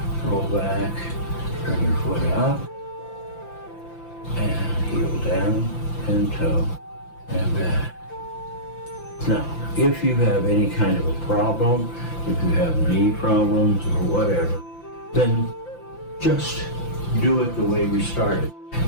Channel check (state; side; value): late; right; 5.9 ms